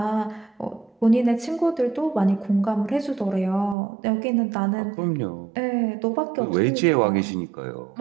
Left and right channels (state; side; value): drops out; left; at 3.8 s